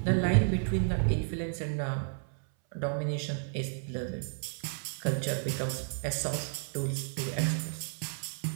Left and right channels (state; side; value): silent; left; 56 dB below the other